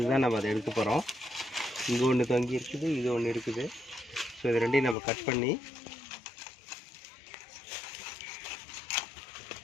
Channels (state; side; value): drops out; right; at 5.0 s